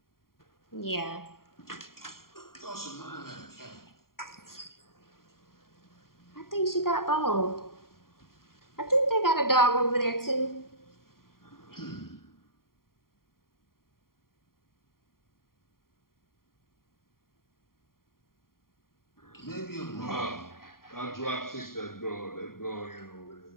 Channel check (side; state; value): right; late; 0.92 ms